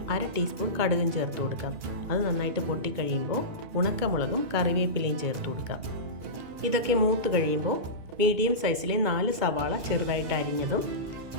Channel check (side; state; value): left; late; 2.4 ms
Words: 1/2 ടീസ്പൂൺ കടുകും ചേർത്ത് കൊടുക്കാം. അത് നന്നായിട്ട് പൊട്ടിക്കഴിയുമ്പോൾ ഉണക്കമുളകും കറിവേപ്പിലയും ചേർത്ത് കൊടുക്കാം. ഇതൊക്കെ മൂത്ത് കഴിയുമ്പോൾ മീഡിയം സൈസിലെ 4 സവാള ചെറുതായിട്ട് അരിഞ്ഞതും